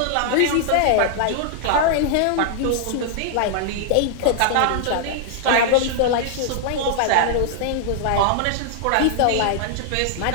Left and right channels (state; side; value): different; both; correlation -0.01